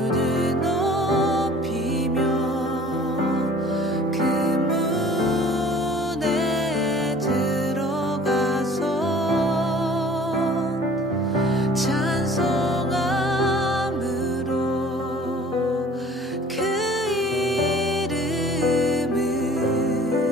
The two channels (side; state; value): both; normal; correlation 0.49